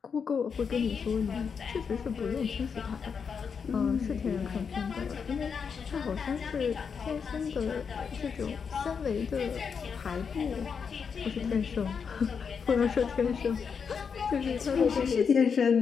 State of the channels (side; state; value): right; quieter; 6.2 dB